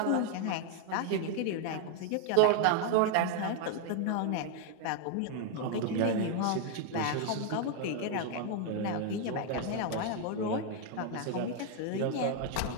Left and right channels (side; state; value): both; different; correlation 0.00